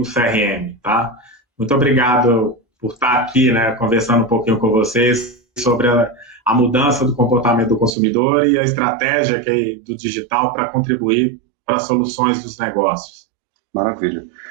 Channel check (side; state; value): left; drops out; at 8.0 s